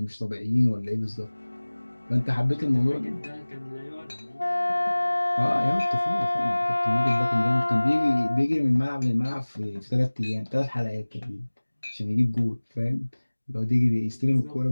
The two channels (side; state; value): both; inverted; correlation -1.00